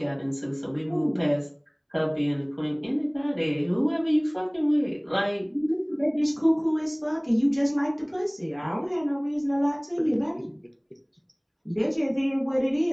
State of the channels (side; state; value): both; identical; correlation 1.00